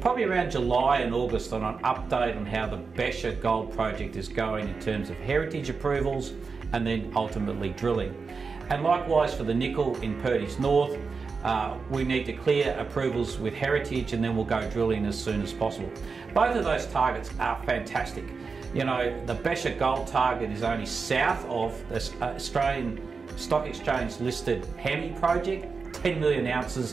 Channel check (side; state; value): left; quieter; 4.8 dB